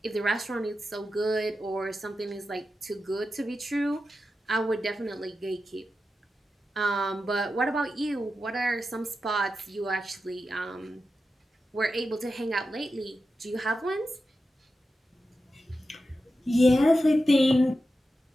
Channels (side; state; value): both; normal; correlation 0.91